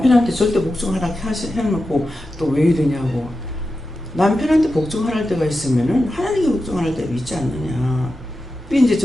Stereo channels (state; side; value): normal; both; correlation 0.91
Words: 절대 복종하라 해놓고 또 왜 이러냐고. 남편한테 복종할 때가 있으면은 하나님께 복종할 때가 있지 않느냐. 이제